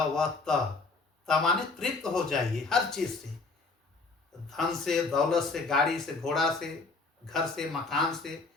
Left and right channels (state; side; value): quieter; right; 3.8 dB